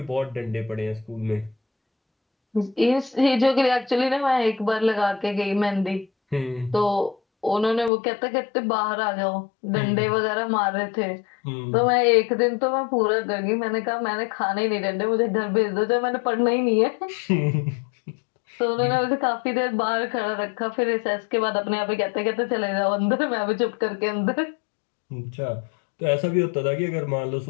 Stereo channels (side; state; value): right; drops out; at 7.9 s